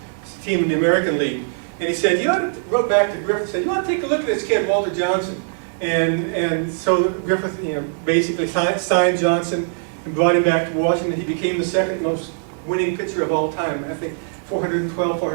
team in the American League. And he said, wrote back to Griffith, said, you ought to take a look at this kid, Walter Johnson. And so Griffith, basically signed Johnson and brought him back to Washington. He became the second most winning pitcher of all time. I think 412,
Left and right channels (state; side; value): silent; left; digital silence